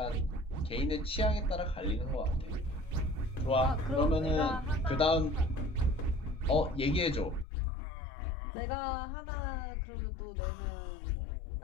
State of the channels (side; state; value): right; drops out; at 7.5 s